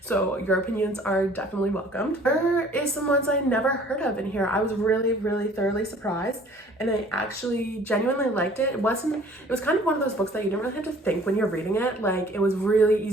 so your opinions are definitely welcomed. There is some ones I never heard of in here. I was really thoroughly surprised, and I actually genuinely liked it. It was kind of one of those books that you didn't really have to think when you're reading it. Like, it was really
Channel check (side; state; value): both; normal; correlation 0.53